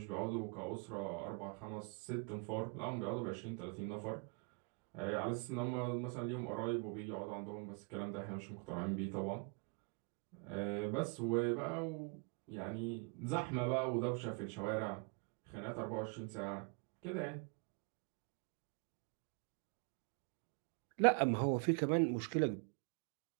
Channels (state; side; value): quieter; left; 34.0 dB